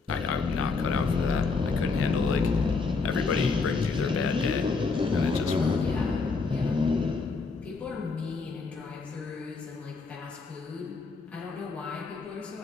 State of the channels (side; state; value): right; quieter; 4.4 dB